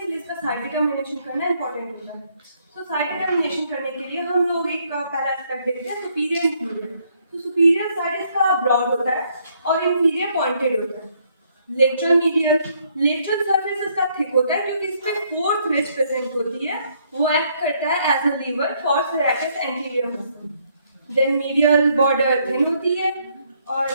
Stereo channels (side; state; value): both; inverted; correlation -0.69